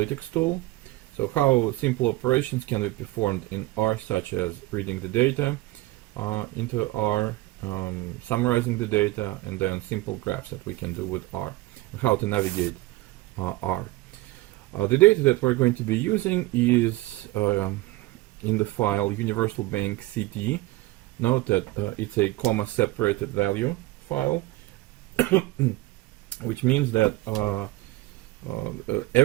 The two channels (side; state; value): left; quieter; 19.2 dB